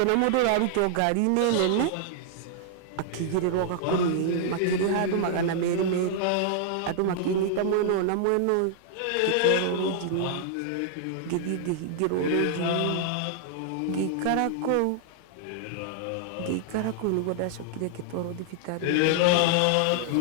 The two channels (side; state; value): both; different; correlation -0.01